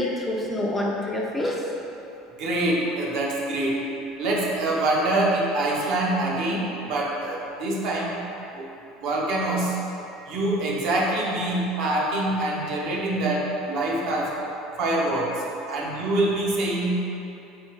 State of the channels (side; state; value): both; normal; correlation 0.48